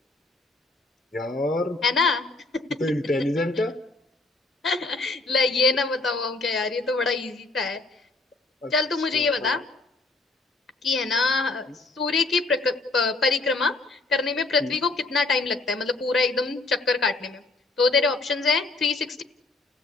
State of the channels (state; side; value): quieter; right; 3.3 dB